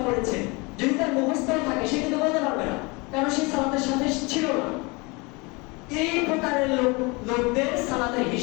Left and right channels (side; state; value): right; quieter; 27.1 dB